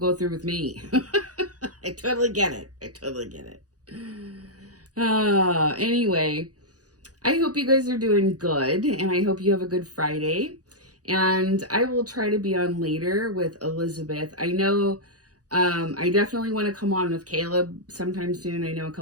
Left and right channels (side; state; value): left; late; 0.67 ms